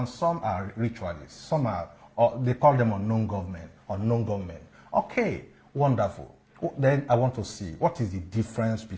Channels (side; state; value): both; identical; correlation 1.00